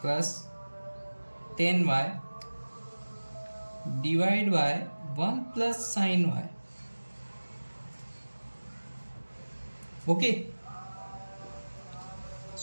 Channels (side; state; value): both; inverted; correlation -1.00